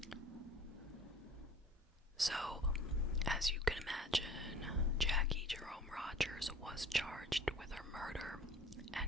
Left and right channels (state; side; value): normal; both; correlation 0.46